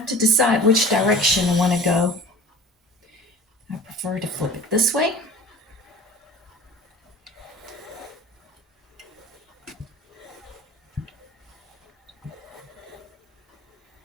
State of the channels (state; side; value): normal; both; correlation 0.39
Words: to decide which direction I want to go. I prefer to flip it this way.